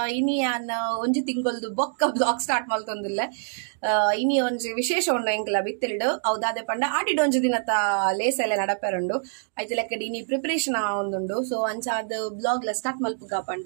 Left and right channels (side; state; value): left; silent; digital silence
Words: ಇನಿ ಯಾನ್ ಒಂಜಿ ತಿಂಗೊಲ್ದು ಬೊಕ್ಕ ಬ್ಲಾಗ್ ಸ್ಟಾರ್ಟ್ ಮಲ್ತೊಂದುಲ್ಲೆ ಇನಿ ಒಂಜಿ ವಿಶೇಷ ಉಂಡು ಎಂಕ್ಲ ಬಿತ್ತಿಲ್ಡು ಹೌದಾದೆ ಪಂಡ ಆಡಿಡ್ ಒಂಜಿ ದಿನತ ಲೇಸ್ ಎಲ್ಲ ನಡಪೆರುಂಡು ಐತೆ ಲೆಕ್ಕಡಿ ಇನಿ ಪ್ರಿಪರೇಷನ್ ಒಂದುಂಡು ಸೊ ಅಂಚಾದ ಬ್ಲಾಗ್ ಲ ಸ್ಟಾರ್ಟ್ ಮಲ್ಪುಗ